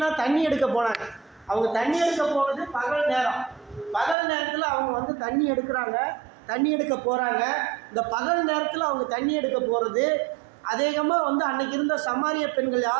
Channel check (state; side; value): drops out; left; at 4.2 s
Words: தண்ணி எடுக்க போனாங்க. அவங்க தண்ணி எடுக்க போகிறது பகல் நேரம். பகல் நேரத்தில் அவங்க தண்ணி எடுக்கிறாங்க, தண்ணி எடுக்க போகிறாங்க. இந்த பகல் நேரத்தில் அவங்க தண்ணி எடுக்க போகிறது அதிகமாக அன்னைக்கு இருந்த சமாரிய பெண்கள்